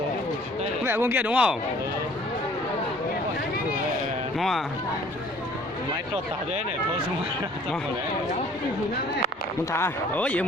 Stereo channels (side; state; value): both; normal; correlation 0.54